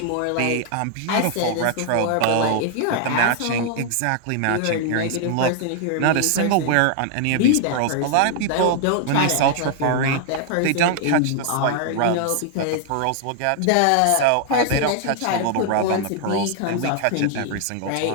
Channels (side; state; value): both; different; correlation 0.00